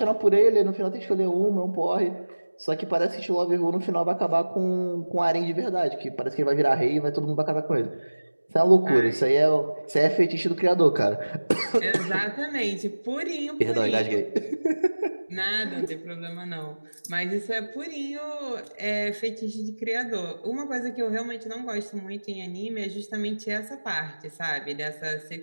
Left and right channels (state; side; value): inverted; both; correlation -1.00